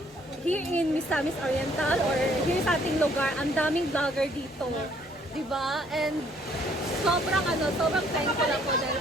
here in Misamis Oriental or here sa ating lugar, ang daming vlogger dito. Diba? And sobrang thankful ako dahil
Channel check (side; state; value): both; normal; correlation 0.64